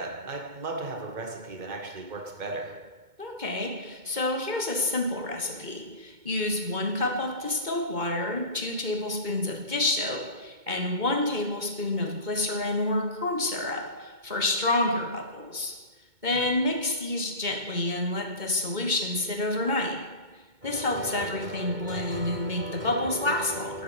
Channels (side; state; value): left; late; 2.2 ms